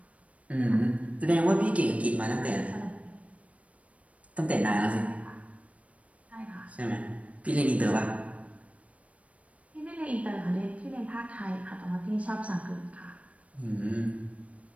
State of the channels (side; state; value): left; late; 0.065 ms